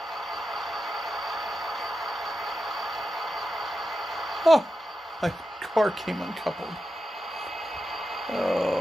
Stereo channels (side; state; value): both; normal; correlation 0.90